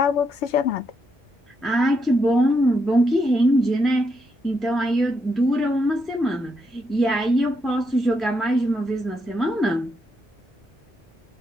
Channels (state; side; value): normal; both; correlation 0.80